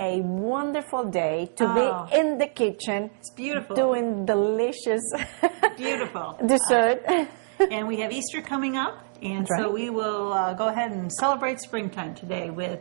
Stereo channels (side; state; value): left; silent; digital silence